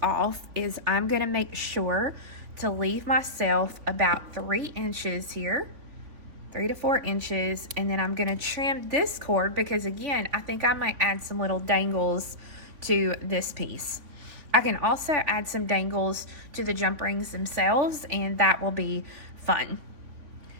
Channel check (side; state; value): left; late; 3.5 ms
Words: off is I'm going to make sure to leave myself about 3 inches here, 3 to 4 inches, and then I'm going to trim this cord because, again, I think I might add some little dangles to this piece. I can also add some dangles to the jump rings themselves, and that will be fun.